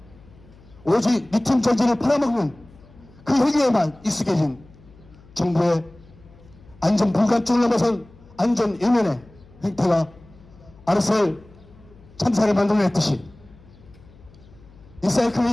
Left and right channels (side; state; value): left; noise; hum, 25 dB below the sound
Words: 오직 리튬 전지를 팔아먹는 그 행위에만 익숙해진 정부의 안전 불감증을 넘어선 안전 외면의 행태가 아르셀 참사를 만들어냈듯이